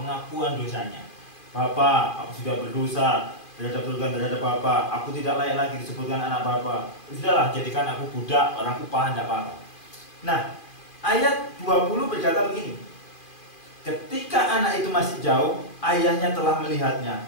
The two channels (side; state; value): right; late; 2.5 ms